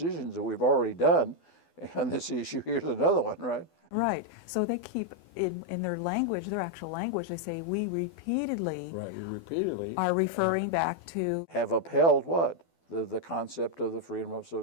that we've already done on this issue, here's another one, right? Right. So they keep in their language, their actual language, they say we repeatedly are referring back to have upheld what? The concept of the freedom of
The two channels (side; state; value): right; late; 12 ms